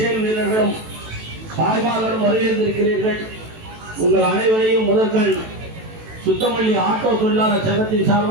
வீரர்களும் தாய்மார்களும் வரவேற்றிருக்கிறீர்கள். உங்கள் அனைவரையும் முதற்கண் சுத்தமல்லி ஆட்டோ தொழிலாளர் சங்கத்தின்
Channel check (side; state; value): left; late; 18 ms